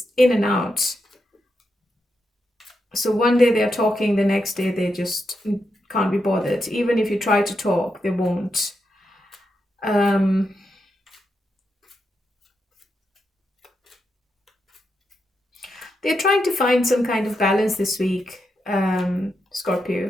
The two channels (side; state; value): both; normal; correlation 0.85